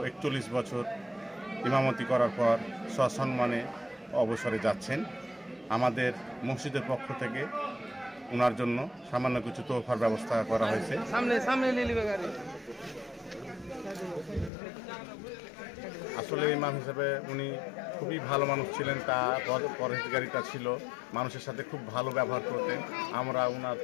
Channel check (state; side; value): drops out; right; at 14.5 s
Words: 41 বছর ইমামতি করার পর সসম্মানে অবসরে যাচ্ছেন। আমাদের মসজিদের পক্ষ থেকে ওনার জন্য সামান্য কিছু তোহফার ব্যবস্থা করা হয়েছে। আসলে ইমাম হিসেবে উনি খুবই ভালো মানুষ ছিলেন, তার পরহেজগারিতা ছিল, মানুষের সাথে খুব ভালো ব্যবহার করতেন। আমরা ওনার